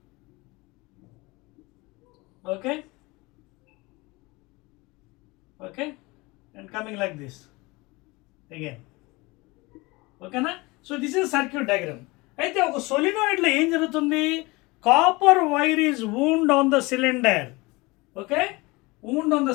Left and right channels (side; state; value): right; quieter; 23.8 dB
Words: okay, and coming like this again, okay na? So this is circuit diagram. అయితే ఒక సోలినాయిడ్ లో ఏం జరుగుతుంది? Copper wire is wound on the cylinder, okay? Wound on